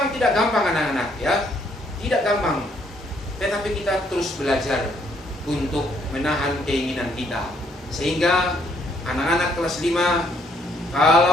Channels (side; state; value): both; normal; correlation 0.69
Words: tidak gampang anak-anak, ya, tidak gampang. Tetapi kita terus belajar untuk menahan keinginan kita. Sehingga anak-anak kelas 5